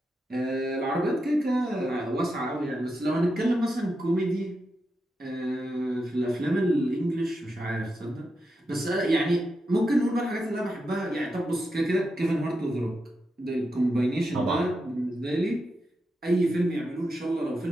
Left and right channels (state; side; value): normal; both; correlation 0.87